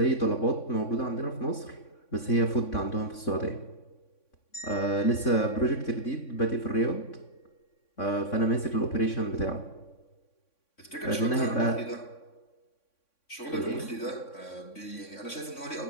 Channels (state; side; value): late; right; 3.6 ms